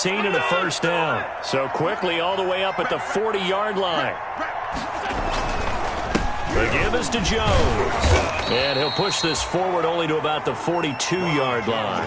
and a first down. So quickly all the way up at the 40-yard line. The give is to Jones. And he'll push this forward only to about the 42-yard line.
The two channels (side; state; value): both; identical; correlation 1.00